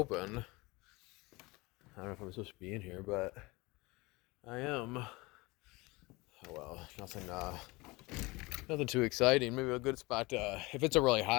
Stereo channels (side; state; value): right; quieter; 23.4 dB